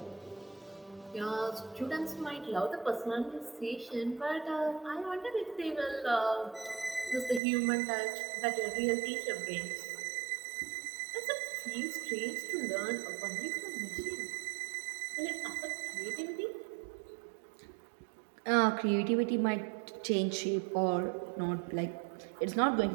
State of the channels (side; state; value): left; drops out; at 7.4 s